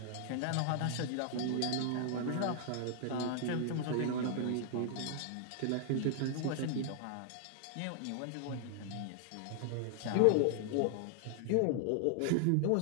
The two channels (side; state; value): both; different; correlation 0.00